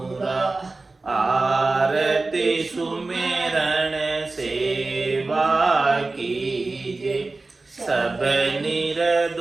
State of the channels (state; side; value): quieter; left; 3.4 dB